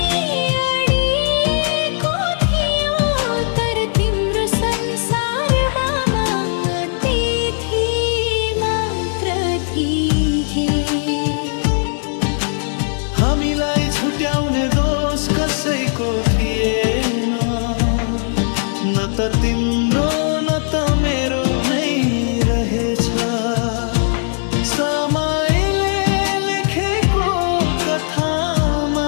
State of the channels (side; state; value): right; silent; 67 dB below the other